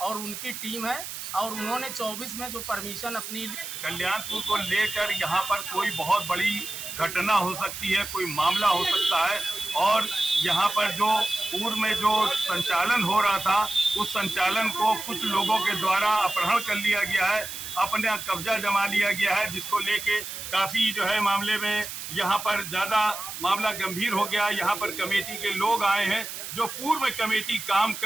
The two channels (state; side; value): noise; right; hiss, 8 dB below the sound